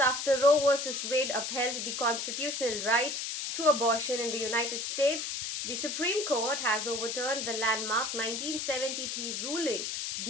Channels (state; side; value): noise; left; hiss, 3 dB below the sound